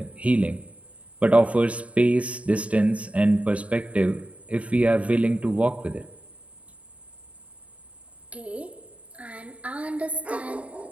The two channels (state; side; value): late; left; 0.065 ms